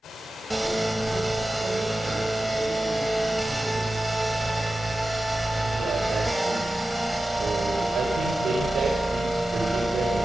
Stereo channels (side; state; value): both; normal; correlation 0.94